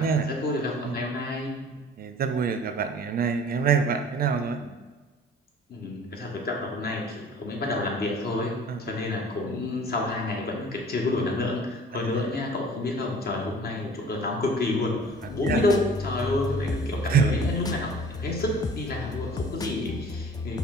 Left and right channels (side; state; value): both; normal; correlation 0.47